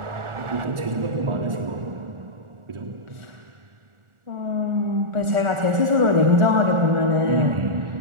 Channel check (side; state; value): left; late; 1.4 ms